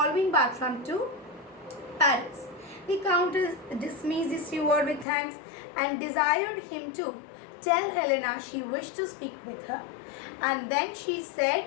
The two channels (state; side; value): drops out; right; at 5.1 s